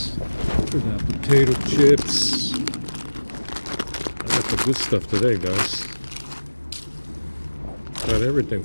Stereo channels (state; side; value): inverted; both; correlation -1.00